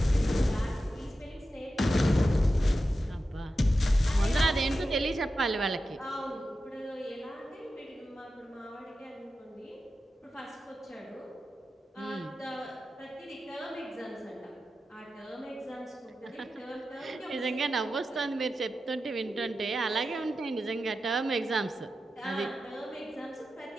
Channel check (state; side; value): normal; both; correlation 0.91